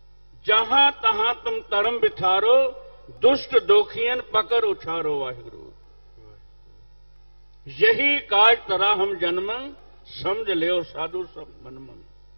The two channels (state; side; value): inverted; both; correlation -1.00